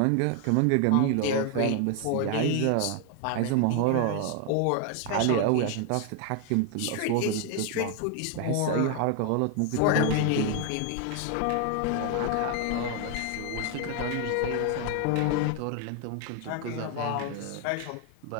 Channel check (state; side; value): different; both; correlation 0.00